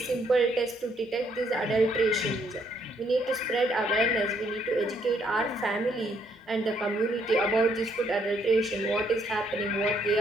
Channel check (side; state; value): both; normal; correlation 0.70